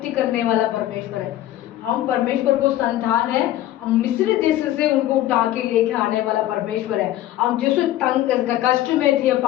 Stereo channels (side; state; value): right; quieter; 13.9 dB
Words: करने वाला परमेश्वर है। हम परमेश्वर को संतान है। हम मिस्र देश से उनको उठा के लेके आने वाला परमेश्वर है। हम जिस कष्ट में थे,